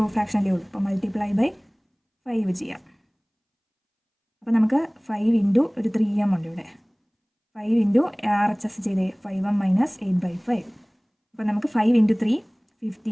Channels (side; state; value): both; identical; correlation 1.00